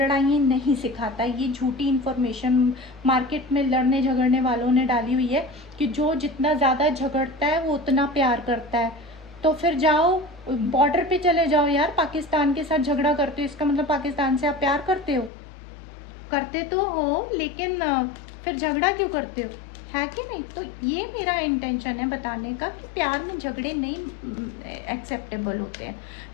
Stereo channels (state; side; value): drops out; right; at 15.3 s